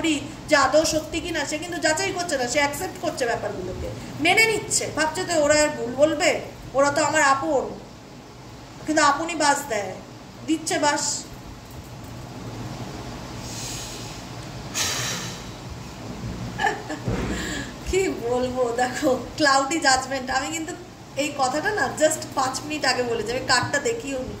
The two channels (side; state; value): both; identical; correlation 1.00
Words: যে আদৌ সত্যি কিনা। সে কিন্তু যাচাই করছে না, সে অ্যাকসেপ্ট করছে ব্যাপারগুলোকে, মেনে নিচ্ছে, ভাবছে তো ওরা আর ভুল বলবে, ওরা তো আমার আপন। কিন্তু আপনই বাস দেয়, দিচ্ছে বাস। কি বলবো, দেখো ক্লাউডি জাজমেন্ট। আমি কিন্তু এই কথাটা না জাস্ট 5 মিনিট আগে বলেছি, আমি কার্ডটা দেখিও